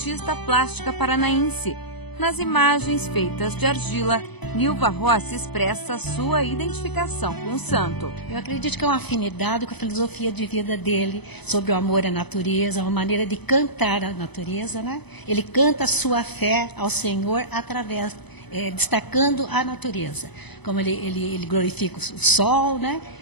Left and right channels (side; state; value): right; late; 0.99 ms